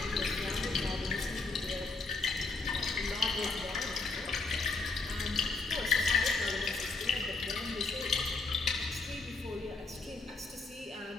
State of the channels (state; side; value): quieter; right; 3.8 dB